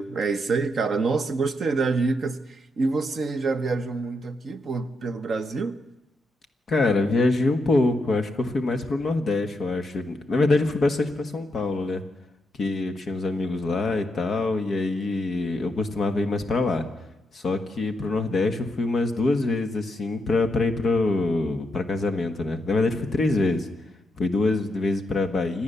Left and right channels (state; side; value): normal; both; correlation 0.81